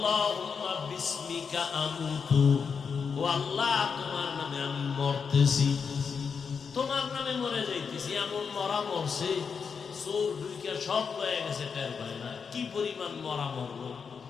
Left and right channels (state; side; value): quieter; right; 6.0 dB